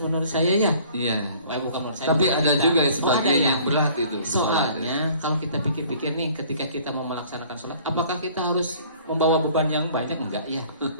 menurut saya ya. Iya. Bukan menurut saya. Tapi bukan ada kita. juga Oh, sebagian ada ya. yang berat itu. Soalnya kalau kita pikir-pikir nih, ketika kita mau melaksanakan sholat, apakah kita harus membawa beban yang banyak? Enggak ya,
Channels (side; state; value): both; inverted; correlation -0.53